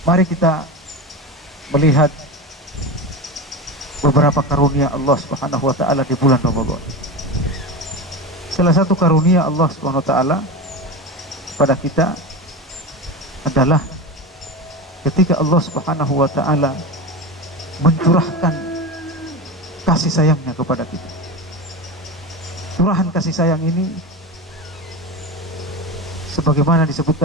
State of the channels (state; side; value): normal; both; correlation 0.23